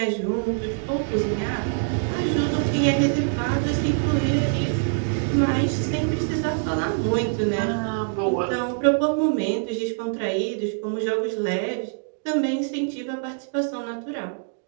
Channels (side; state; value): left; silent; digital silence